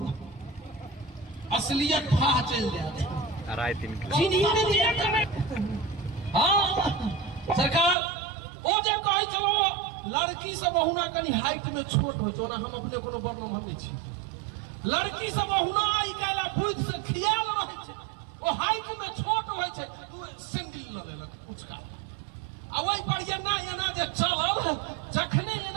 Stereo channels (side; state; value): left; drops out; at 8.0 s